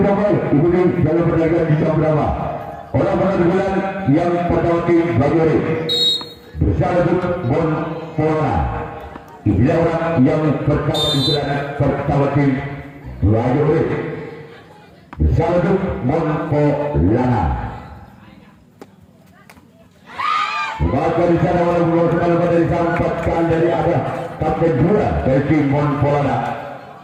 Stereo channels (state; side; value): identical; both; correlation 1.00